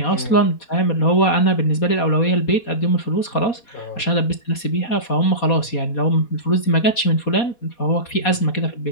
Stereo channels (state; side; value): late; right; 4.2 ms